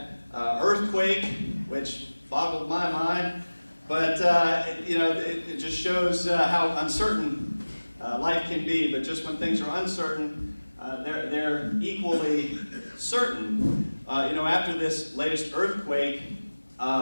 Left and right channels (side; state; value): both; inverted; correlation -1.00